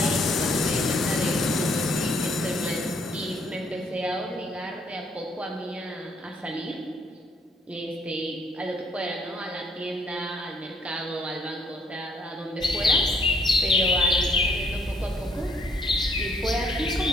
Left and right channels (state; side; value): normal; both; correlation 0.67